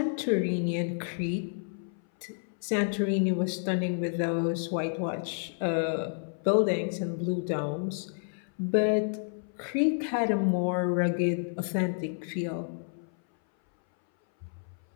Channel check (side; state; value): right; silent; 58 dB below the other